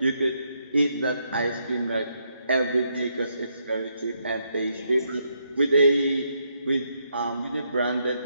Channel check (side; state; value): both; inverted; correlation -0.77